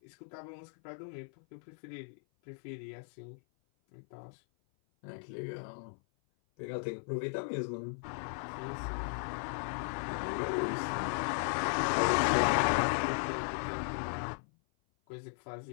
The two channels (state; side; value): silent; right; 54 dB below the other